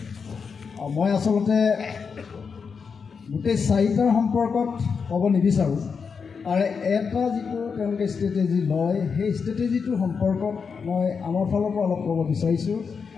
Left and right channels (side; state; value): right; quieter; 5.7 dB